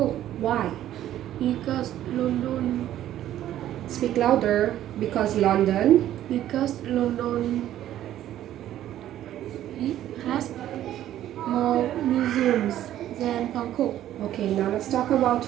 Why? because London Speak louder. Because London. it has more museums than Bangkok. Okay, now let's talk about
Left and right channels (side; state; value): left; quieter; 12.4 dB